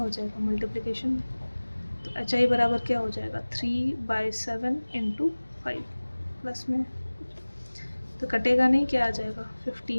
जाएगा मल्टीप्लिकेशन में, तो HI बराबर क्या हो जाएगा 3/7 × 5 प्लस में, तो कटेगा नहीं, क्या आ जाएगा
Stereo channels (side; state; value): both; inverted; correlation -1.00